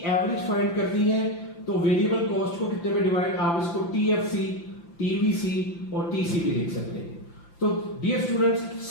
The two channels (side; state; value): right; late; 5.9 ms